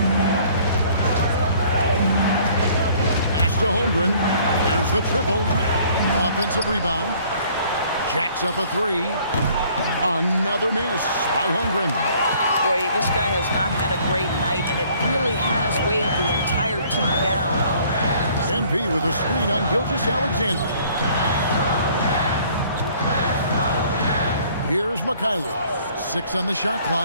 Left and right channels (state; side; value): inverted; both; correlation -0.57